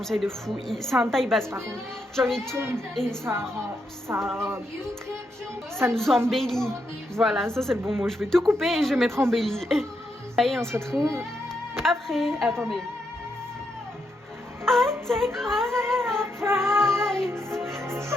de fou. C'est un taille basse par contre. Genre il tombe et ça nous embellit. Voilà, ça c'est le bon mot. Je vais tout couper et je vais mettre embelli. Allez, on se retrouve après. Attendez. I take my prize. So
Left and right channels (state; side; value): normal; both; correlation 0.81